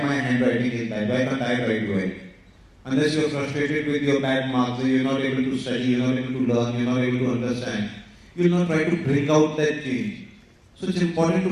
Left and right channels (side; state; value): both; identical; correlation 1.00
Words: handwriting is bad, why can't I write well? Unless you are frustrated with your bad marks, you're not able to study, you're not able to learn, you're not able to understand, you will not try to bring out that change. So it's important